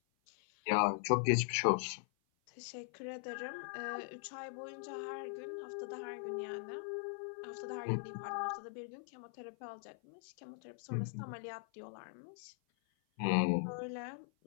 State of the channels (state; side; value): silent; right; 51 dB below the other